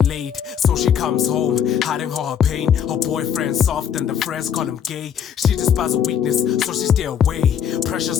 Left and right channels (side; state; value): right; quieter; 8.5 dB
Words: laid. So she comes home, hiding all her pain. Her boyfriend's soft and the friends call him gay. She despises weakness, so she stay away.